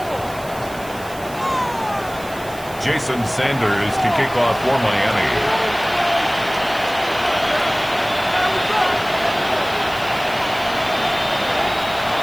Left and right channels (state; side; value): noise; right; hiss, 18 dB below the sound